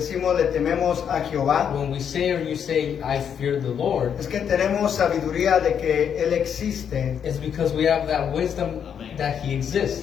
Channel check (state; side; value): quieter; right; 8.0 dB